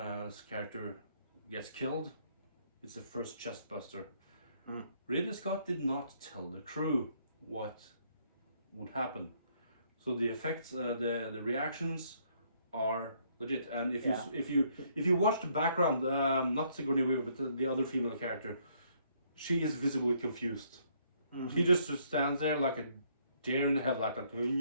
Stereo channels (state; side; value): inverted; both; correlation -0.68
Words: character gets killed, it's the first chest buster. Ridley Scott did not tell the crew what would happen, so the effects, the reactions are legit. And if you watch the background, not Sigourney Weaver, but the other female character, she is visibly confused. She just stands there like a deer in the headlight, like